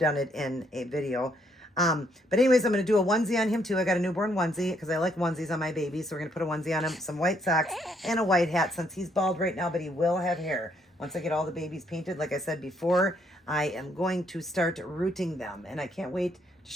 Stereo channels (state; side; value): normal; both; correlation 0.71